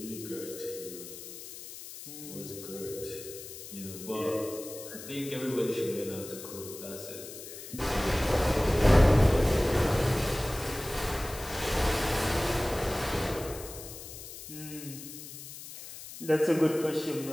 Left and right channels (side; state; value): left; noise; hiss, 12 dB below the sound